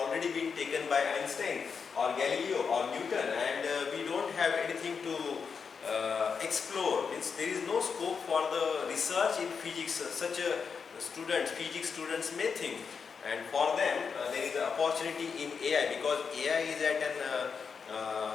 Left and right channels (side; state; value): right; quieter; 5.9 dB